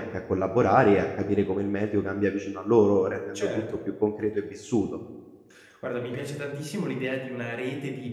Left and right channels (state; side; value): identical; both; correlation 1.00